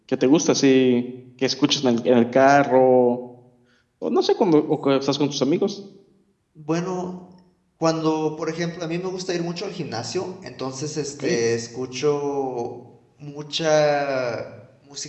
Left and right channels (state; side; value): identical; both; correlation 1.00